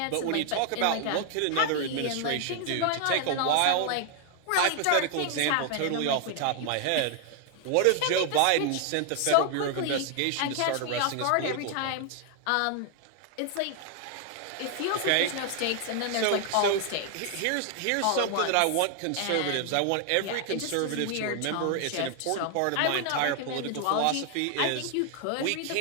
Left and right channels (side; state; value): both; different; correlation 0.00